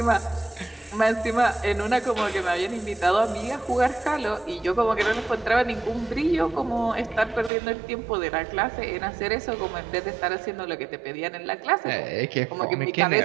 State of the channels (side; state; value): left; drops out; at 7.5 s